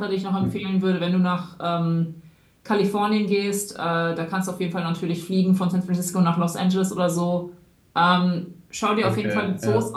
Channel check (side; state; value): both; identical; correlation 1.00